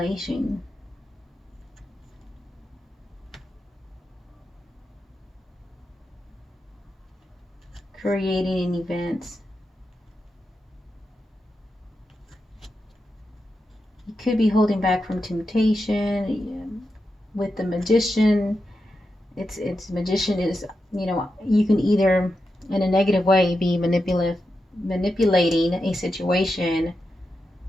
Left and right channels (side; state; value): both; normal; correlation 0.88